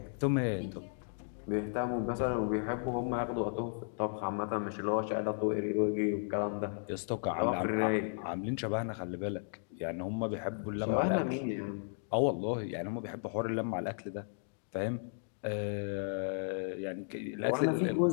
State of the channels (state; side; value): silent; right; digital silence